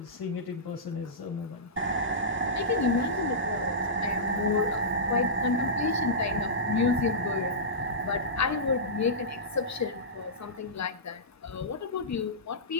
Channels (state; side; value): normal; both; correlation -0.16